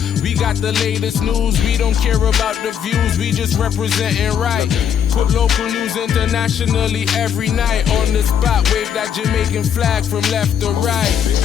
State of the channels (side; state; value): right; quieter; 8.3 dB